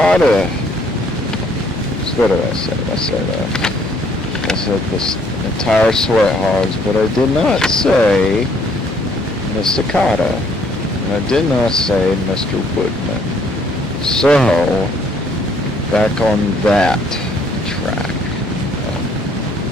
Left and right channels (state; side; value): normal; both; correlation 0.64